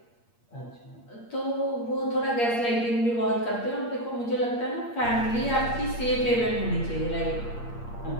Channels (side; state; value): right; late; 8.5 ms